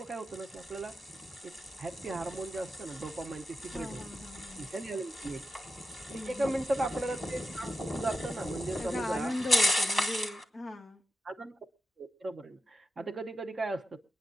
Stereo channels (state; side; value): normal; both; correlation 0.89